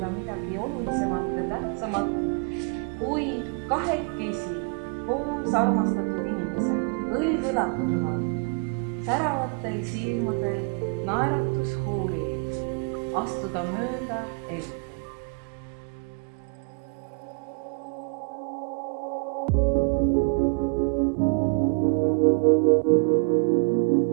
midagi olulisemat ja tähtsamat kui kahekesi koos armastatud inimesed, õlg õla kõrval, säravatel silmadel naeratushuuli, astuda mööda elu.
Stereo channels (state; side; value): quieter; left; 37.2 dB